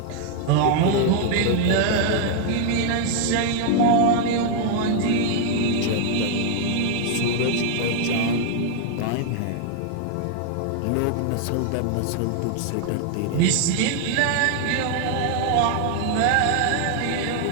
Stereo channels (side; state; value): both; different; correlation 0.00